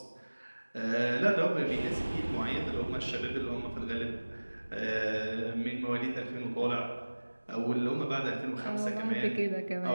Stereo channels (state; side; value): inverted; both; correlation -1.00